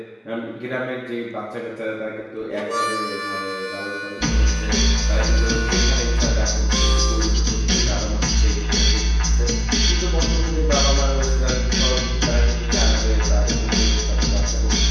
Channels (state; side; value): identical; both; correlation 1.00